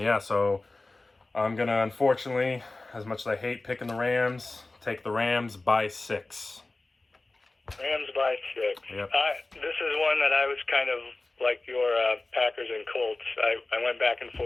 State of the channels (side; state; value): right; quieter; 3.2 dB